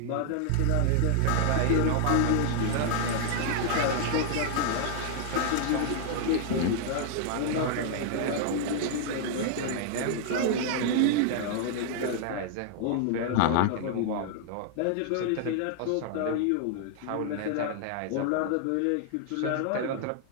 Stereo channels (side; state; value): both; different; correlation 0.00